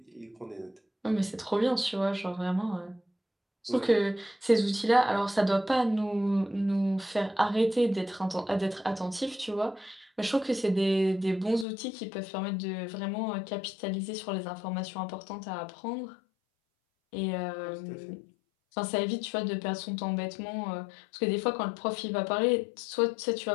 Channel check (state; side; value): drops out; right; at 11.7 s